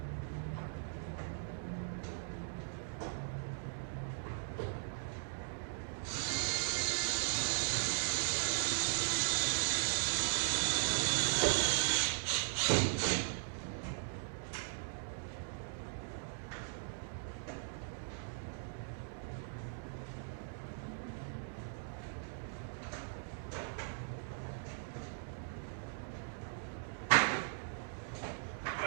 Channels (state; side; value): silent; left; digital silence